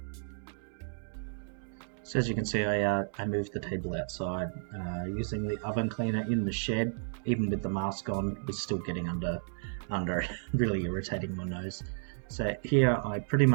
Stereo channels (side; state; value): left; silent; digital silence